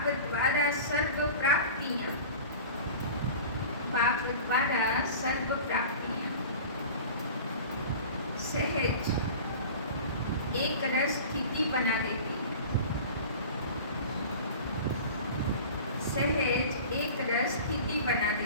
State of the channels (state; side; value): inverted; both; correlation -0.38